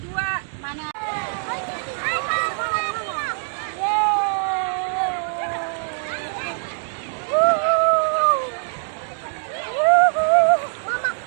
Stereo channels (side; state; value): left; silent; 64 dB below the other